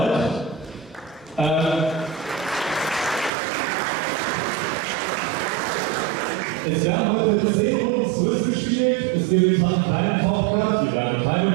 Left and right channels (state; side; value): drops out; left; at 3.3 s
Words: Es werden heute 10 Runden zurückgespielt, es gibt keinen Talkcast, wir werden keine